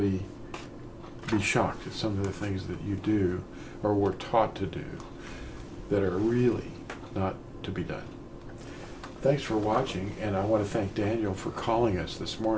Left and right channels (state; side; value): identical; both; correlation 1.00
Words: be shocked at some of the things that you do or were taught to do that are really not to be done. Thanks for watching, and I want to thank Daniel for calling us this